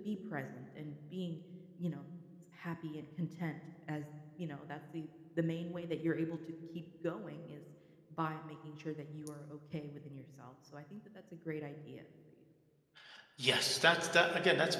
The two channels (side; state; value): both; identical; correlation 1.00